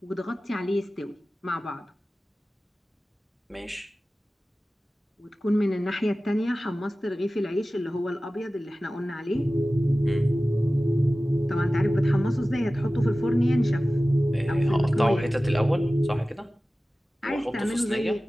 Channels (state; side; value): normal; both; correlation 0.96